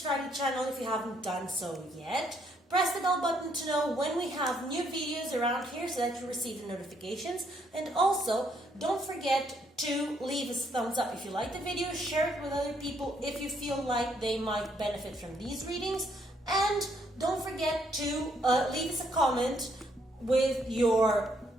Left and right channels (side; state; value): both; normal; correlation 0.71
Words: to the channel if you haven't done so yet. Press the bell button to know when we have new videos around here so that you receive the notifications. And also, don't forget to leave us a thumbs up if you like the video. Share it with other people if you feel like they might benefit from these readings. And don't forget to leave us a comment with your